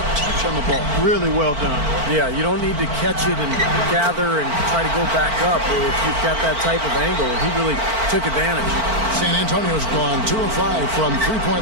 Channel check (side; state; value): left; late; 4.5 ms